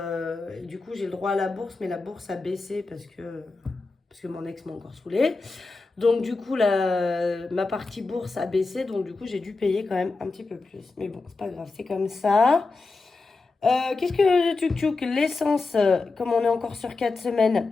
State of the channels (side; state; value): right; quieter; 3.8 dB